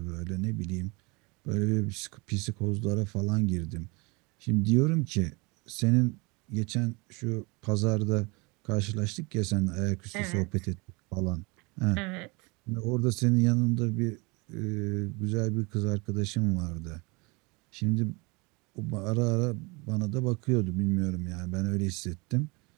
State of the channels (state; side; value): quieter; left; 27.7 dB